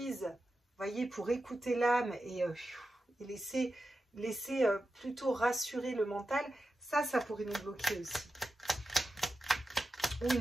vous voyez, pour écouter l'âme et laisser plutôt rassurer le mental, ça pourrait nous bloquer aussi. Ou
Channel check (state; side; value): normal; both; correlation 0.91